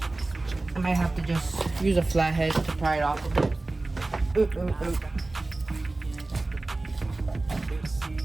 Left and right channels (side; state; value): left; quieter; 3.1 dB